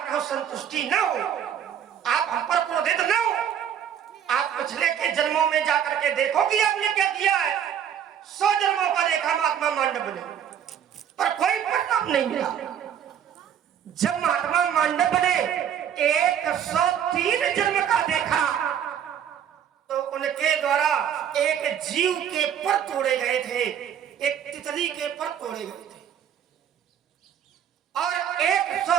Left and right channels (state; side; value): quieter; left; 9.2 dB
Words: संतुष्टि न हो, आप हम पर क्रोधित न हो, आप पिछले के जन्मों में जाकर के देखो कि आपने क्या किया है। 100 जन्मों का देखा महात्मा मांडव ने, पर कोई परिणाम नहीं मिला। जब महात्मा मांडव ने 103 जन्म का देखा, तो उनके द्वारा एक जीव के पर तोड़े गए थे, एक तितली के पर तोड़े गए थे। और